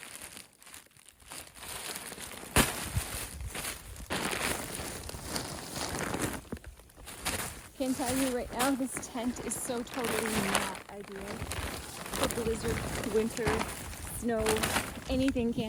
Can tell you right now, this tent is so totally not ideal for blizzard, winter, snow, anything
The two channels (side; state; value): both; identical; correlation 1.00